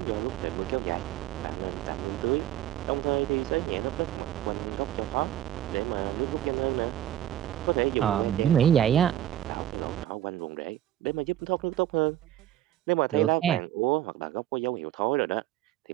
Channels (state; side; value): quieter; left; 12.5 dB